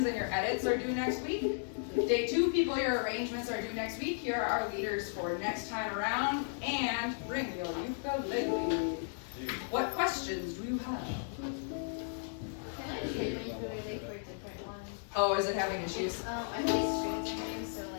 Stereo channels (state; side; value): silent; right; digital silence